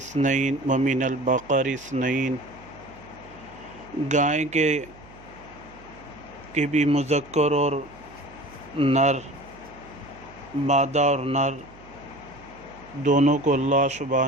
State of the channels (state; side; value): noise; right; hum, 22 dB below the sound